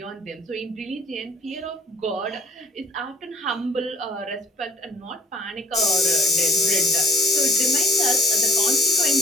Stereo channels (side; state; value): both; normal; correlation 0.59